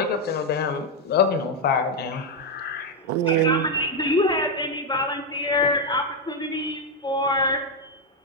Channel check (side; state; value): both; normal; correlation 0.03